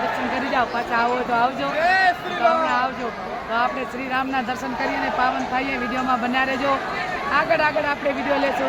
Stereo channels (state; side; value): identical; both; correlation 1.00